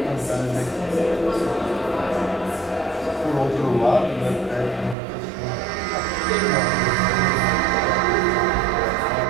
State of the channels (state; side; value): drops out; left; at 5.0 s